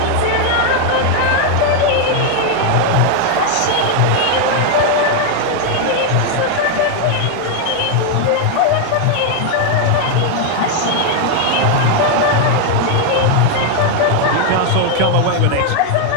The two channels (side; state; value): both; different; correlation 0.00